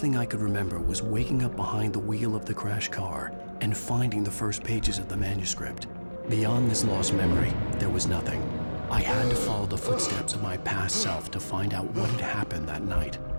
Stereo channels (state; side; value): inverted; both; correlation -1.00